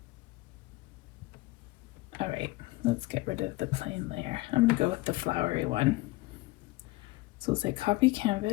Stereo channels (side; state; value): right; quieter; 21.0 dB